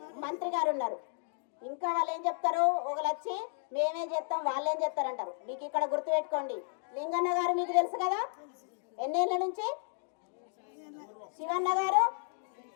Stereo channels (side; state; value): right; silent; digital silence